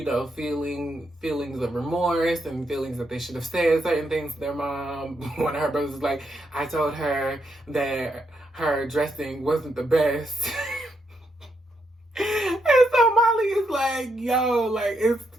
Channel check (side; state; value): both; normal; correlation 0.80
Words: feeling feelings of remorse and feelings that they should have said certain things to their mom. One of her brothers was like, I told her that her dressing wasn't the best. And so Molly is like, yo, like, it's